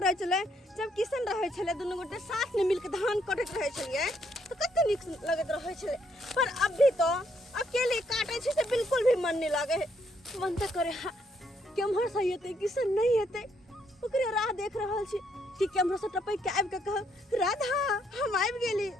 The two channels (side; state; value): both; normal; correlation 0.72